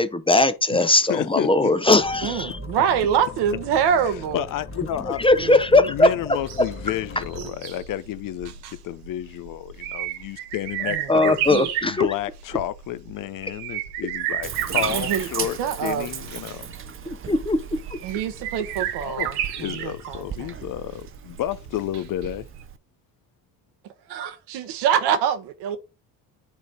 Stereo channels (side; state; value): both; normal; correlation 0.22